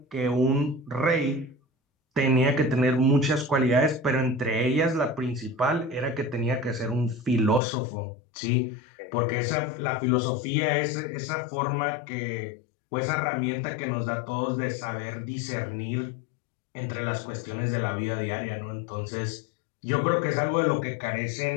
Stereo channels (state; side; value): drops out; right; at 7.6 s